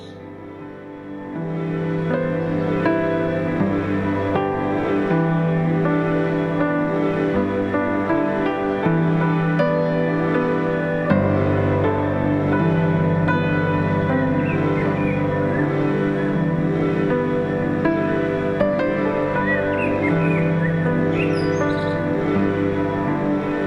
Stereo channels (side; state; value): both; identical; correlation 1.00